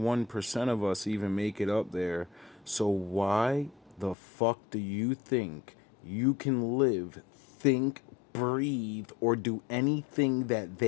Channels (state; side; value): drops out; right; at 4.2 s